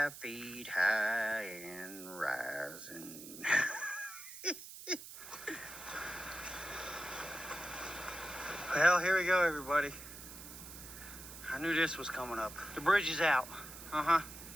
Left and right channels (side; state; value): right; noise; hiss, 13 dB below the sound